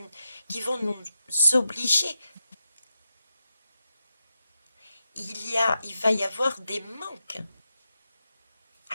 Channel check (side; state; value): both; inverted; correlation -0.89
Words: vont nous obliger. Il va y avoir des manques.